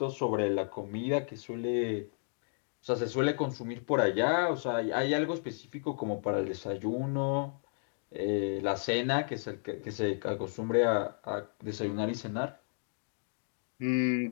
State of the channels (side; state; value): right; silent; digital silence